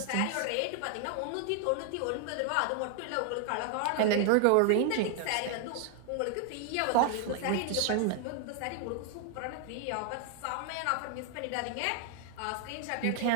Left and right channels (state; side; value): different; both; correlation 0.00